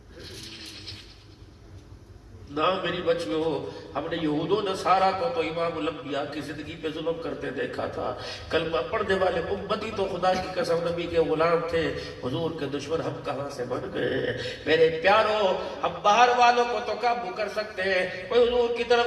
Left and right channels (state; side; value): identical; both; correlation 1.00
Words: نہ میری بچیوں، ہم نے یہود و نصارہ کو تو امام الانبیاء کی زندگی پہ ظلم کرتے دیکھا تھا. کلمہ پڑھنے والے امتی تو خدا کی قسم نبی کے غلام تھے، حضور کے دشمن ہم کہاں سے بن گئے؟ میرے پیاروں ہم باہر والوں کو تو قابو کر سکتے ہیں، کوئی حضور کی